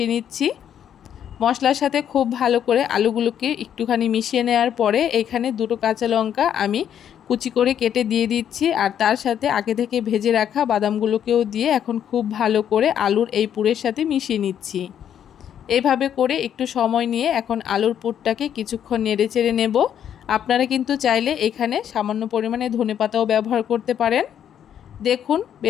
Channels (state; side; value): quieter; right; 9.4 dB